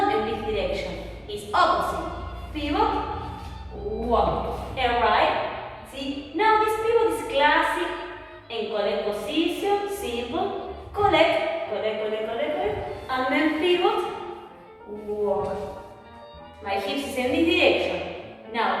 in this direction, it's opposite. Pivot, walk. Alright? See? Now this pivot is classic. And collect position, simple, collect, and then pivot, walk. My hips is in this direction.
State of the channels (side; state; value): both; identical; correlation 1.00